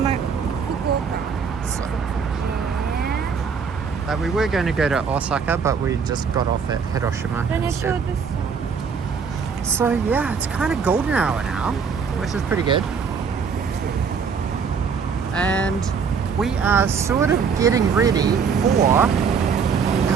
Fukuoka. We were going to go to Osaka, but we just got off at Hiroshima Then I instead. showed this. So yeah, it's kind of golden hour now, which is pretty good. And we are sort of getting ready for our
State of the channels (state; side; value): quieter; left; 6.0 dB